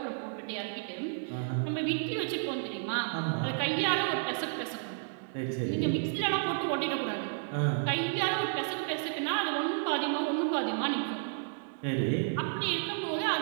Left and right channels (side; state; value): left; silent; digital silence